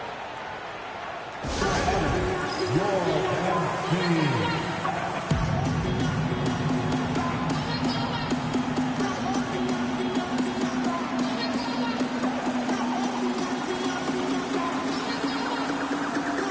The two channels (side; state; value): both; identical; correlation 1.00